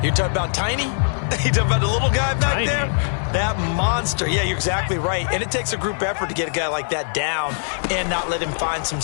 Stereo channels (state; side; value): silent; right; digital silence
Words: You're talking about Tiny? You're talking about the little guy back there? That monster. Yeah, you're exactly right. And it takes a group effort to get a guy like that down and not let him find some